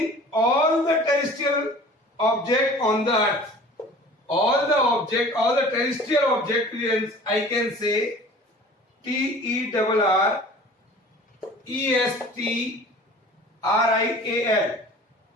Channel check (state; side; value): normal; both; correlation 0.45